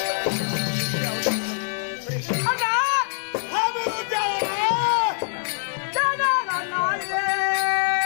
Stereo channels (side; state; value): right; silent; digital silence